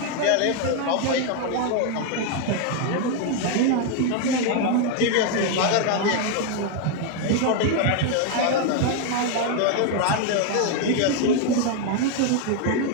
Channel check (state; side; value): different; both; correlation 0.00